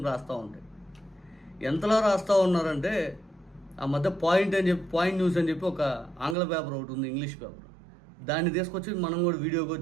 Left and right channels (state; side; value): drops out; left; at 6.4 s